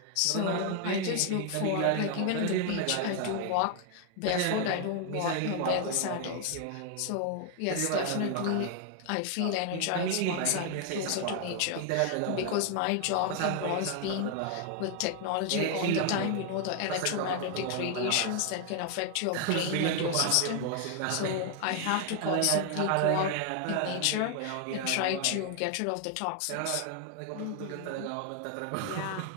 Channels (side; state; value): both; different; correlation 0.00